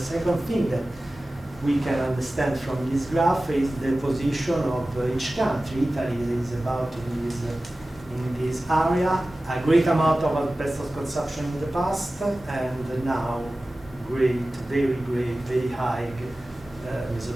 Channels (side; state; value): both; normal; correlation 0.96